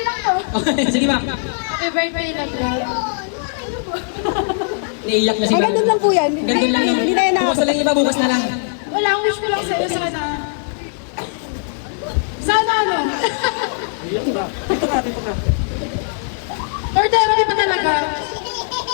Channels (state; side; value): silent; right; 58 dB below the other